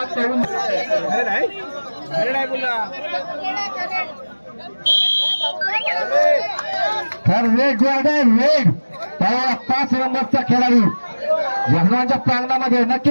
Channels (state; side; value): inverted; both; correlation -1.00